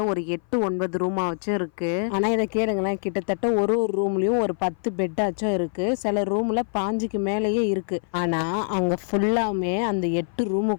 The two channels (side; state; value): right; silent; 57 dB below the other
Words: ஒரு 8-9 ரூமாக வச்சும் இருக்குது. ஆனால் இதை கேளுங்களேன், கிட்டத்தட்ட ஒரு ரூம்லேயும் ஒரு 10 பெட்டாச்சும் இருக்குது. சில ரூமில் 5க்கு மேலேயே இருக்குது. ஆனால் அங்கே ஃபுல்லாமே அந்த 8